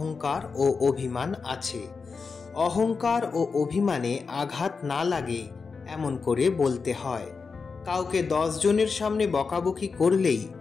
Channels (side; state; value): right; quieter; 4.9 dB